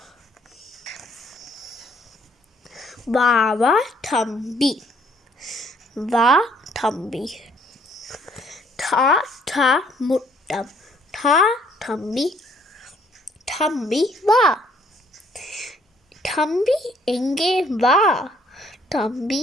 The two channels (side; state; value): both; normal; correlation 0.64